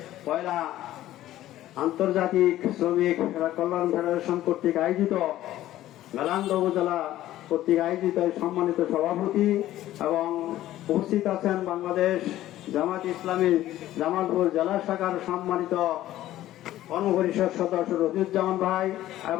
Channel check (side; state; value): right; quieter; 14.1 dB